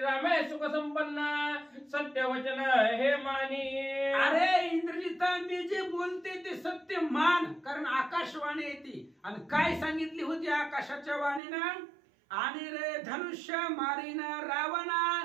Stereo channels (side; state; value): left; drops out; at 11.4 s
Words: सुख संपन्न सत्यवचन हे मानी. अरे इंद्रजिता मी जे बोलते ते सत्य मान, कारण आकाशवाणी येते. आणि काय सांगितली होती आकाशाच्या वाणीनं? आणि रे धनुष्य मारीन रावणा